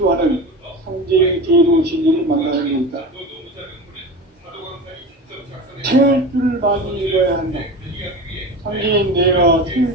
상제의 대도 진리를 만나는 데 있다. 태울 줄을 많이 읽어야 한다. 상제인 내가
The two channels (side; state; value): both; normal; correlation 0.29